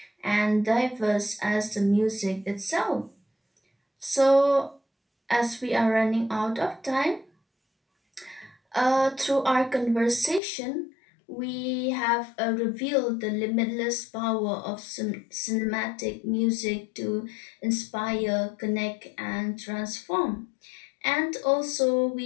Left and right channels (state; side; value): drops out; right; at 10.4 s